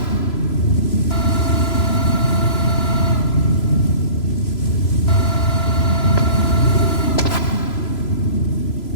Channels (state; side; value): late; right; 3.0 ms